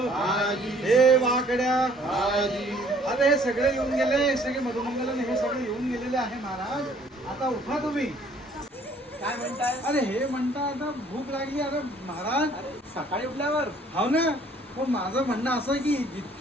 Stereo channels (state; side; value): normal; both; correlation 0.59